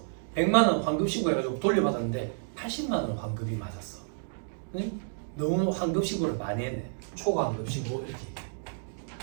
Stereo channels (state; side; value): silent; left; digital silence